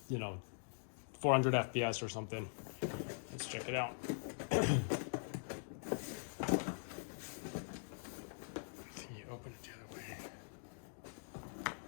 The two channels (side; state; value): right; silent; digital silence